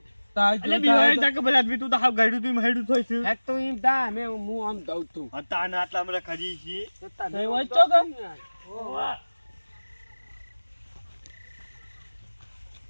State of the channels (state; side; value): inverted; both; correlation -1.00